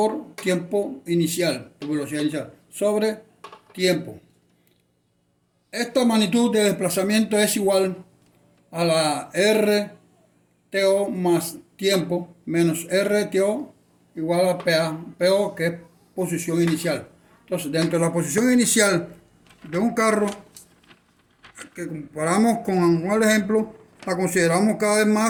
tiempo inicial, por velocidad inicial, sobre tiempo. Esta magnitud de desplazamiento es igual a la RTO más tiempo menos RTO igual a PO, que es posición inicial. Entonces, dentro de la posición inicial de un carro, que comparamos con un ejemplo, la consideramos cada vez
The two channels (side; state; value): both; identical; correlation 1.00